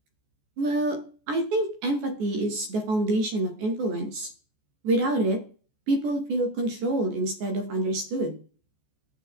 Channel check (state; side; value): late; left; 14 ms